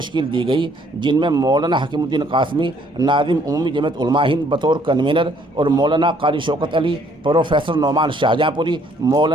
دی گئی، جن میں مولانا حکیم الدین قاسمی، ناظم عمومی جمعیت علماء ہند بطور کنوینر، اور مولانا قاری شوکت علی، پروفیسر نعمان شاہجہاں پوری،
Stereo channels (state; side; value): normal; both; correlation 0.63